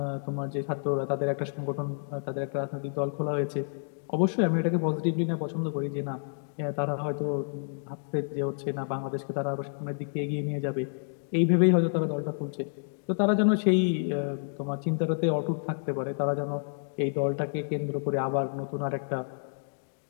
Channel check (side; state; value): right; silent; digital silence